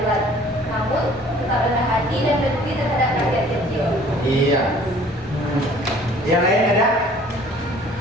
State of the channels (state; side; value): normal; both; correlation 0.53